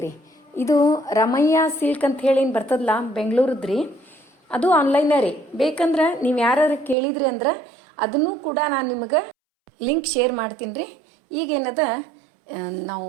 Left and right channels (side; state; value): left; drops out; at 7.0 s